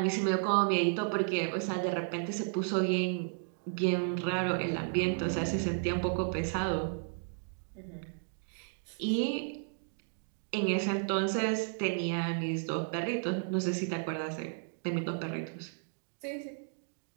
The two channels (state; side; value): silent; left; digital silence